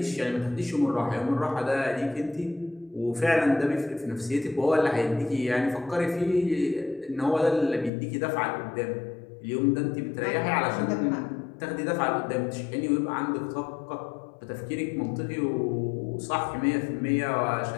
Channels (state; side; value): drops out; right; at 7.9 s